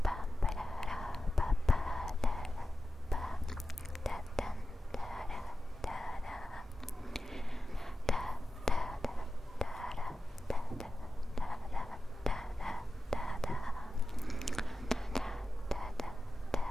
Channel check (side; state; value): both; normal; correlation 0.93